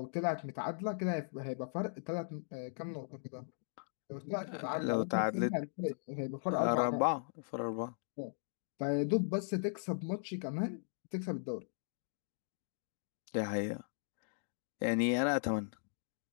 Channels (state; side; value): silent; right; digital silence